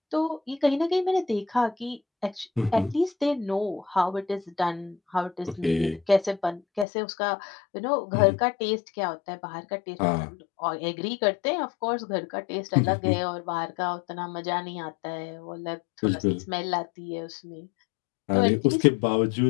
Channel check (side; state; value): right; drops out; at 6.9 s